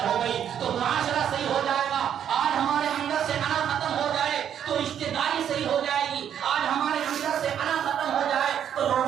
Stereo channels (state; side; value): quieter; left; 9.2 dB